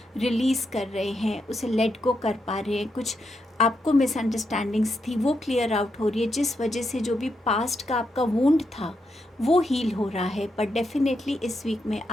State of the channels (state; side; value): normal; both; correlation 0.83